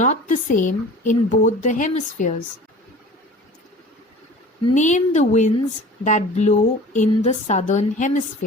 the same in both the hemispheres? Name the winds that blow in the southern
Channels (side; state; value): both; normal; correlation 0.42